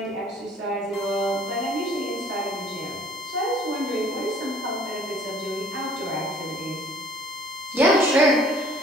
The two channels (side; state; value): both; normal; correlation 0.55